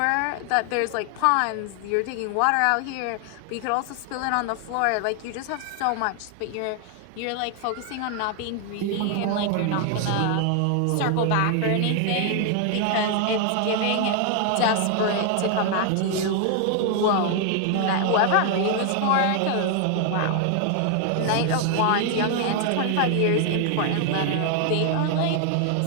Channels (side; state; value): both; different; correlation 0.00